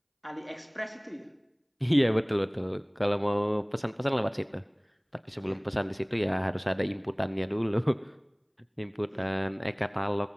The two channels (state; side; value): identical; both; correlation 1.00